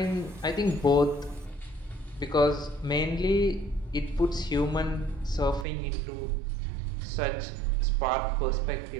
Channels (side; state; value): left; drops out; at 5.7 s